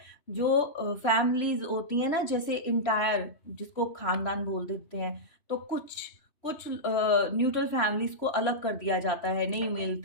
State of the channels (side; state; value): right; late; 3.1 ms